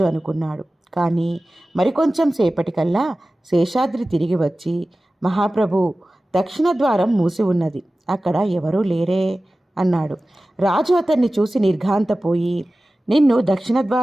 అనుకున్నాడు. కానీ మరికొంచెం సేపటికల్లా శేషాద్రి తిరిగి వచ్చి, మహాప్రభు, దక్షిణ ద్వారం మూసి ఉన్నది, అక్కడ ఎవరూ లేరే అన్నాడు. రాజు అతన్ని చూసి నిర్ఘాంతపోయి, నిన్ను దక్షిణ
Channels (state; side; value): normal; both; correlation 0.96